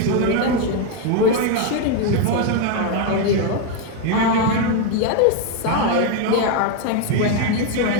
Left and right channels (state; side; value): different; both; correlation 0.01